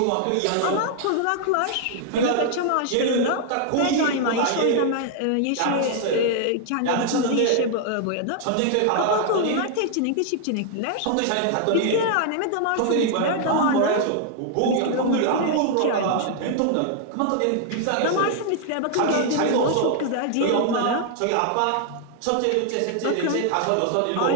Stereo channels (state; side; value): different; both; correlation 0.00